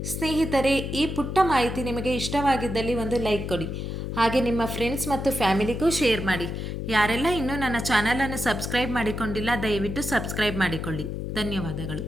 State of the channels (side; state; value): left; noise; hum, 4 dB below the sound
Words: ಸ್ನೇಹಿತರೆ, ಈ ಪುಟ್ಟ ಮಾಹಿತಿ ನಿಮಗೆ ಇಷ್ಟವಾಗಿದ್ದಲ್ಲಿ ಒಂದು ಲೈಕ್ ಕೊಡಿ. ಹಾಗೆ ನಿಮ್ಮ ಫ್ರೆಂಡ್ಸ್ ಮತ್ತು ಫ್ಯಾಮಿಲಿಗೂ ಶೇರ್ ಮಾಡಿ. ಯಾರೆಲ್ಲ ಇನ್ನೂ ನನ್ನ ಚಾನಲನ್ನು ಸಬ್ಸ್ಕ್ರೈಬ್ ಮಾಡಿಕೊಂಡಿಲ್ಲ, ದಯವಿಟ್ಟು ಸಬ್ಸ್ಕ್ರೈಬ್ ಮಾಡಿಕೊಳ್ಳಿ. ಧನ್ಯವಾದಗಳು.